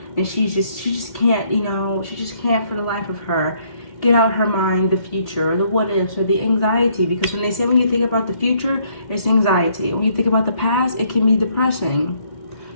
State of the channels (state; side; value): late; right; 2.3 ms